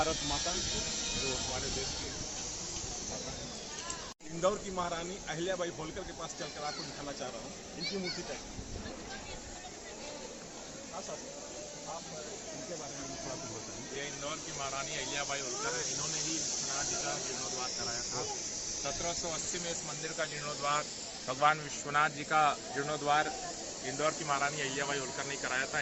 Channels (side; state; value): both; identical; correlation 1.00